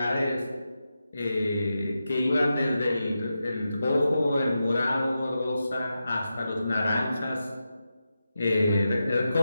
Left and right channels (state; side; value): inverted; both; correlation -0.90